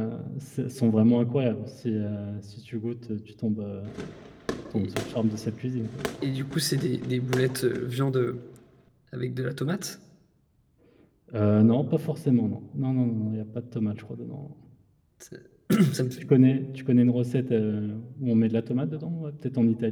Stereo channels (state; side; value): identical; both; correlation 1.00